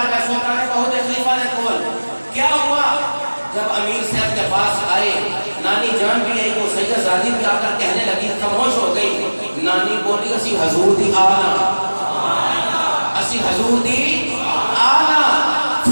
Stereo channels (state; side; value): inverted; both; correlation -1.00